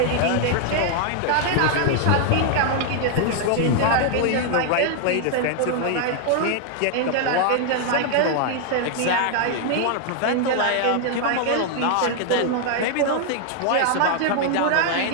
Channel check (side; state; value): both; different; correlation 0.00